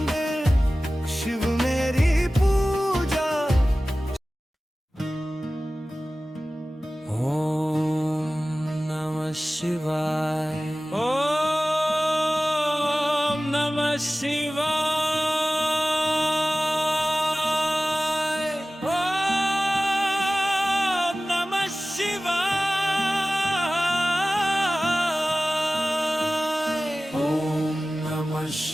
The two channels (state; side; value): normal; both; correlation 0.97